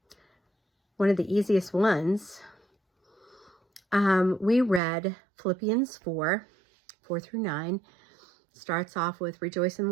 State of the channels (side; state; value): left; drops out; at 4.8 s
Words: one of the easiest ones. We read Philippians 4:4-9. Starts off with rejoice in